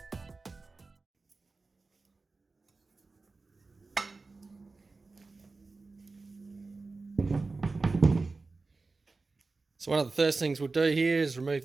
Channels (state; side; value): quieter; left; 3.8 dB